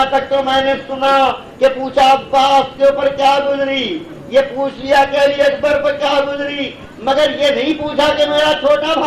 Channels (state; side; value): identical; both; correlation 1.00